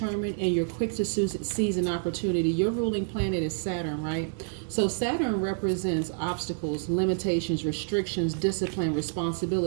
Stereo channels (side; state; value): left; silent; digital silence